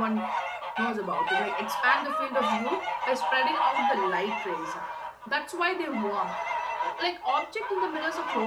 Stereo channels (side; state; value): both; identical; correlation 1.00